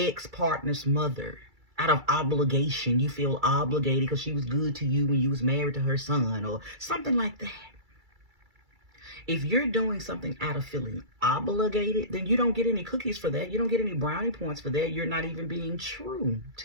mother out of obligation. You feel obligated because she was good to you when you was married to her son or something like that. If you're doing something out of feeling obligated, then you don't get any cookies for that. You don't get any brownie points for that. You're not even being true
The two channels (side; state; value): left; late; 2.3 ms